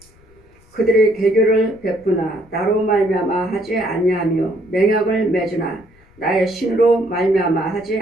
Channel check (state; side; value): noise; left; rumble, 29 dB below the sound